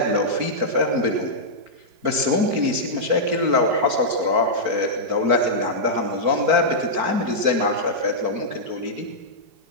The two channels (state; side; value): late; left; 4.5 ms